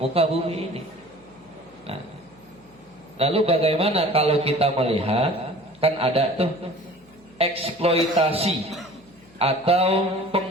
bumi ini. Nah, lalu bagaimana kalau kita melihat, kan ada tuh eksploitasi atau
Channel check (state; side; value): noise; left; hum, 28 dB below the sound